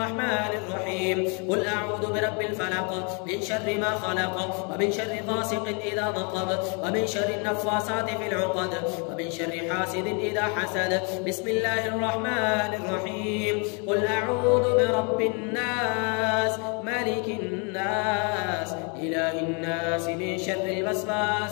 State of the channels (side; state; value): right; quieter; 35.6 dB